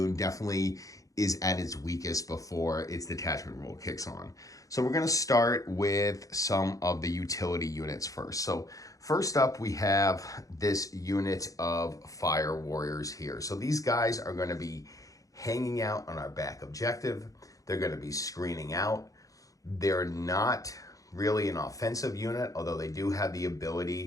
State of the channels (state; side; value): late; right; 0.17 ms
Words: definitely is at its weakest before its detachment rule kicks on. So we're going to start with some of the utility units first. So first up, we have this unit of fire warriors here. So these guys are going to be hanging out on our back objective. They're going to be screening out. They're not really an offensive unit, although they do have the